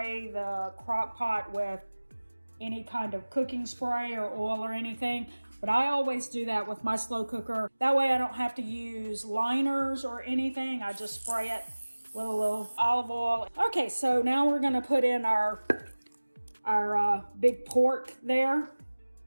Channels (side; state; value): both; inverted; correlation -1.00